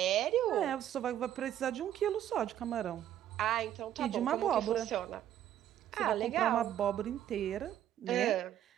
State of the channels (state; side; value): quieter; left; 11.3 dB